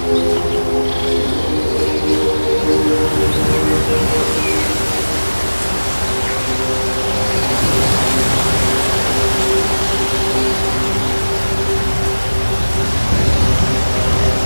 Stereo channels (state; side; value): inverted; both; correlation -1.00